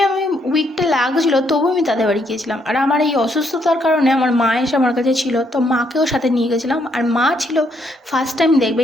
আমি উইকটা লাগছিল, তবু আমি তাদের বাড়ি গিয়েছিলাম। আর আমার এই অসুস্থতার কারণে আমার মা এসে আমার কাছে ছিল, তো মাকেও সাথে নিয়ে গেছিলাম। আর মা ছিল ফার্স্ট টাইম দেখবে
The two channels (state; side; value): normal; both; correlation 0.73